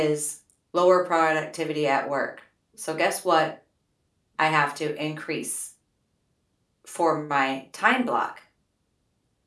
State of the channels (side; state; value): both; identical; correlation 1.00